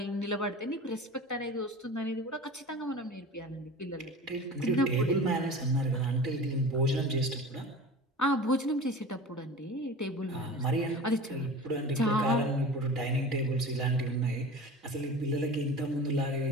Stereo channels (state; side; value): normal; both; correlation 0.35